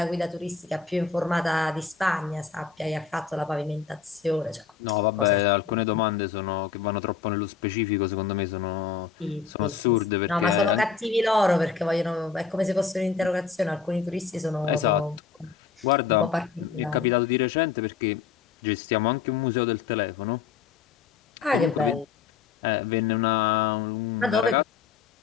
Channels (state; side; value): quieter; right; 6.1 dB